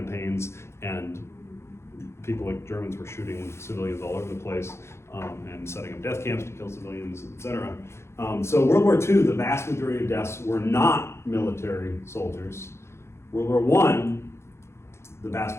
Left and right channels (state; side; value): late; right; 0.13 ms